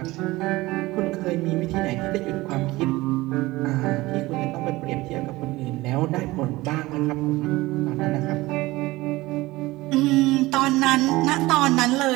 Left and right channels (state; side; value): quieter; left; 19.6 dB